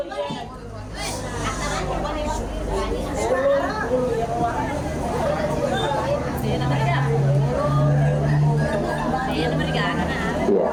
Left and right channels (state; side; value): identical; both; correlation 1.00